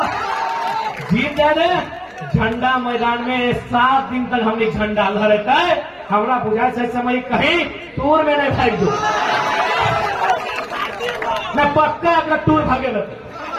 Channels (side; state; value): both; identical; correlation 1.00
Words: जीत जाए झंडा मैदान में 7 दिन तक हमने झंडा लहराता है। हमरा बुझाए से समय कहीं टूर में नहीं भाग दो, मैं पक्का अगर टूर भागे